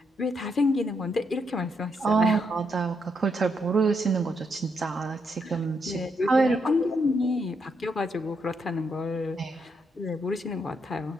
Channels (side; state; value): both; normal; correlation 0.78